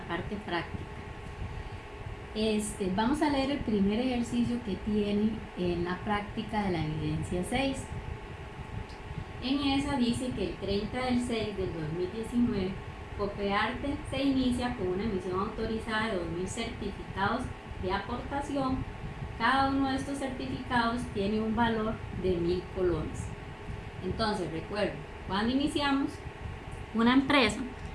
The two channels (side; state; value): both; identical; correlation 1.00